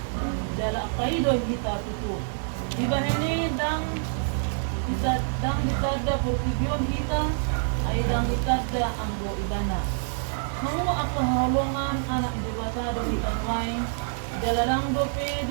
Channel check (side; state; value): left; silent; digital silence